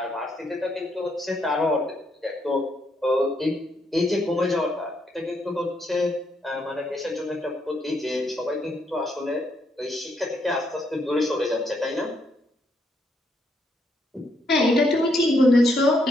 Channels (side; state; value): both; normal; correlation 0.75